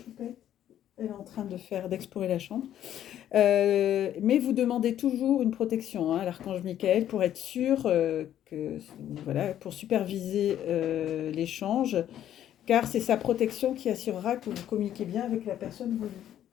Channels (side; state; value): right; quieter; 11.2 dB